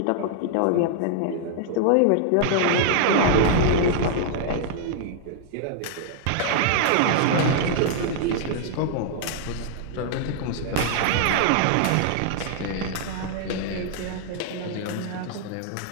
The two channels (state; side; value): different; both; correlation -0.01